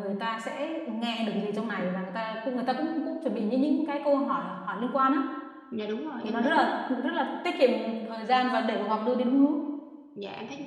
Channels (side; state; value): both; identical; correlation 1.00